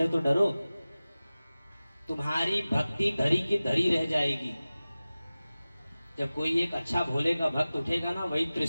तो डरो, तुम्हारी भक्ति धरी की धरी रह जाएगी। जब कोई एक अच्छा भोले का भक्त उठेगा ना, वही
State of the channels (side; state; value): both; inverted; correlation -0.97